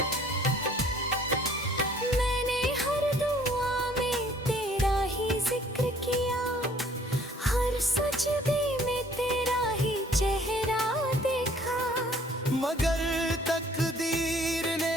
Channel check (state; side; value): normal; both; correlation 0.57